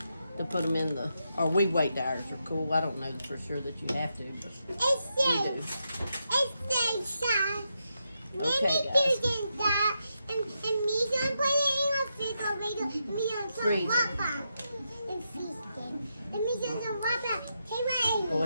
to put them in the, or we wait till ours are cool. I don't know for sure that you have to, but we do. It's the Okay, guys. And me gonna put it in a refrigerator, and me gonna Freeze it. wrap up and freeze it. And me gonna wrap up. Hey, right. Go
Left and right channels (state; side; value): inverted; both; correlation -0.84